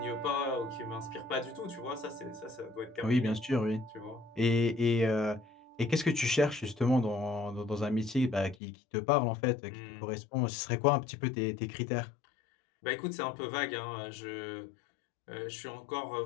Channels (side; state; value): right; drops out; at 8.6 s